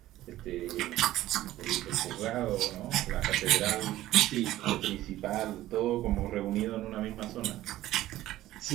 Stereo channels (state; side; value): quieter; left; 15.0 dB